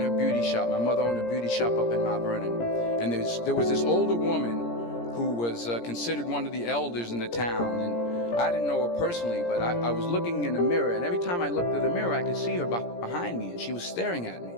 her beauty shop. My mother owned a beauty shop up in Mount Vernon. And there was this older woman who was considered one of the elders in the town. And I didn't know her personally, but I was looking in the mirror, and every time I looked at the mirror, I could see her behind me, and she was staring at me.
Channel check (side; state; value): right; late; 17 ms